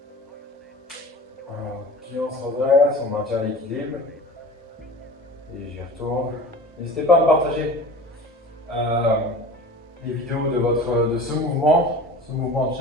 Ok, on se redresse, on maintient l'équilibre. Et j'y retourne. N'hésitez pas à me partager les vidéos de ce mouvement de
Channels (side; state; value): both; normal; correlation 0.38